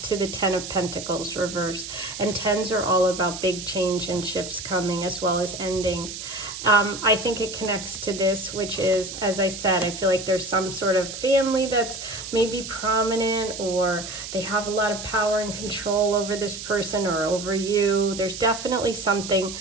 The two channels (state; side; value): noise; right; hiss, 9 dB below the sound